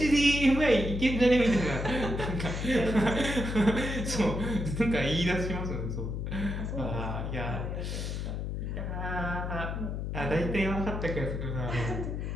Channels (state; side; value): noise; left; hum, 3 dB below the sound